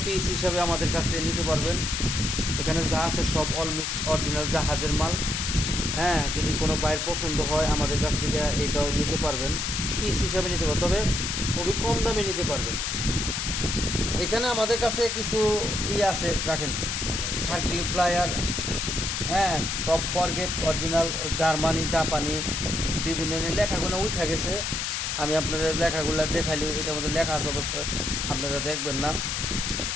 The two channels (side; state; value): left; noise; hiss, 1 dB below the sound